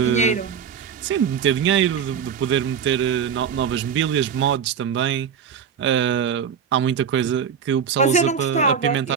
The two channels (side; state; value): left; quieter; 7.3 dB